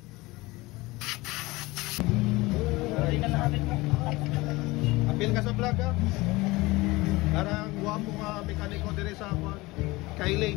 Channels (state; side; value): quieter; right; 21.4 dB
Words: Apil ka sa vlog ha. Karang guwapo nga mekaniko dire sa